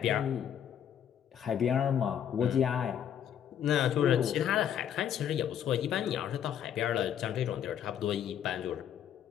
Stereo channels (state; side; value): quieter; right; 9.4 dB